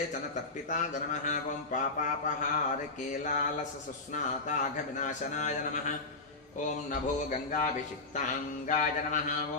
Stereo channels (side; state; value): right; quieter; 3.4 dB